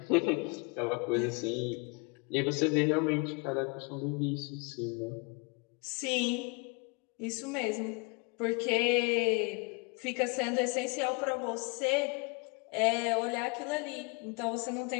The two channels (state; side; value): quieter; right; 31.7 dB